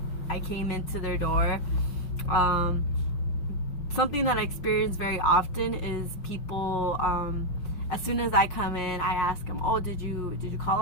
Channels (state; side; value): late; right; 5.5 ms